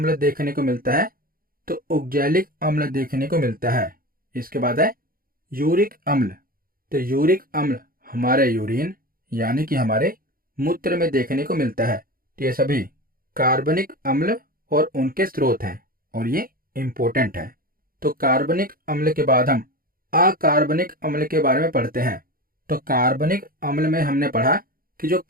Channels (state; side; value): late; left; 0.42 ms